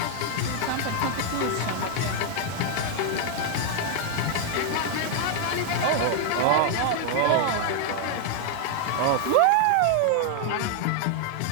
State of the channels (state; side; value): different; both; correlation 0.00